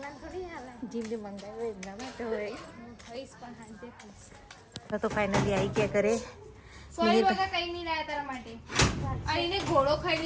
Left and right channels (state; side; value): identical; both; correlation 1.00